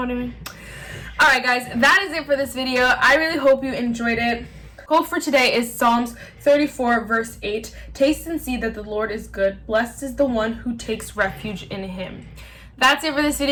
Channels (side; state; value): both; identical; correlation 1.00